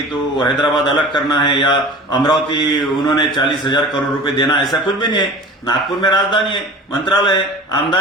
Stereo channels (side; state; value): both; normal; correlation 0.40